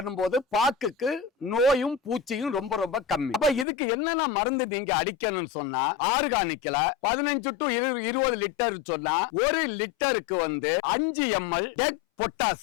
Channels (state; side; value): drops out; right; at 3.7 s